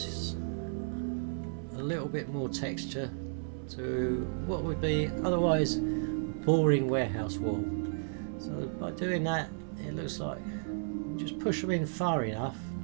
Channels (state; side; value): silent; left; 56 dB below the other